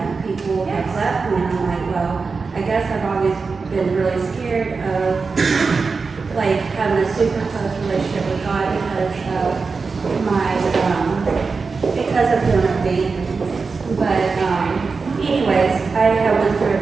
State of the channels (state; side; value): quieter; left; 4.6 dB